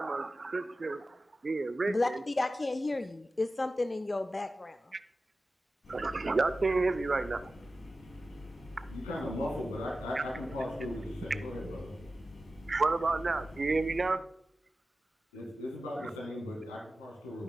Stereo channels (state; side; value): normal; both; correlation 0.94